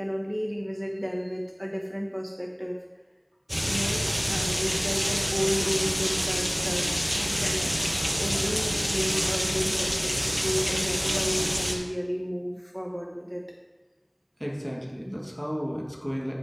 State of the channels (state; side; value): identical; both; correlation 1.00